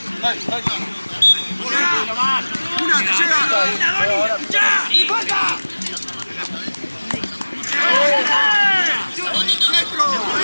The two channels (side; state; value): both; inverted; correlation -1.00